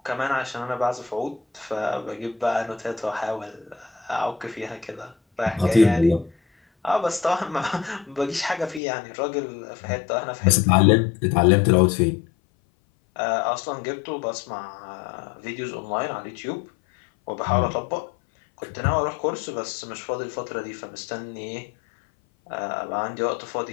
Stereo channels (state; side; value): drops out; right; at 8.8 s